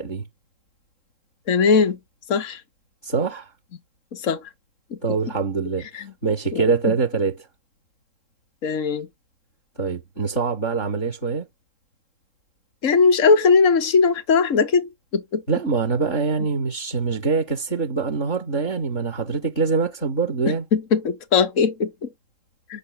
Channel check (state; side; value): late; right; 3.7 ms